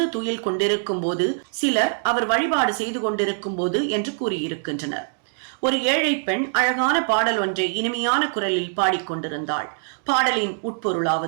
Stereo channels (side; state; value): left; silent; digital silence